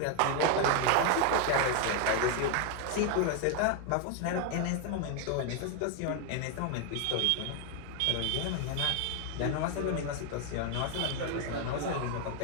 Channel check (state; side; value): different; both; correlation 0.01